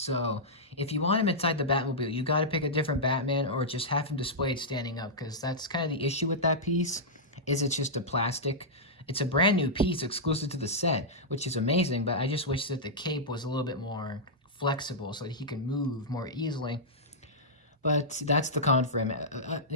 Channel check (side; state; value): both; normal; correlation -0.09